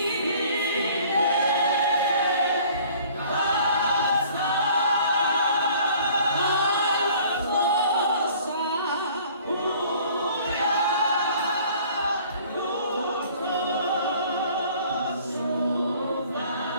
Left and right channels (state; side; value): inverted; both; correlation -0.53